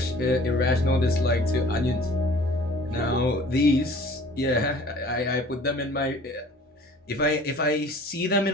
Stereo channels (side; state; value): both; normal; correlation 0.49